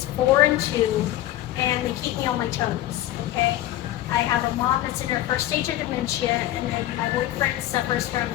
4 and 2, and they keep me on my toes, okay? I have a mom that's in her first stage of dementia, and then my boyfriend suffers from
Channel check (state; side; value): quieter; right; 14.3 dB